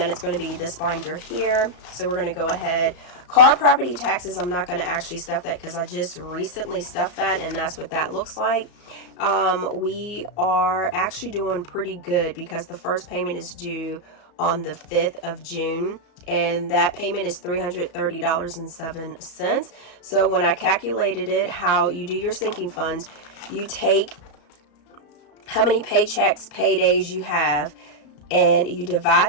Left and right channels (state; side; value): late; right; 34 ms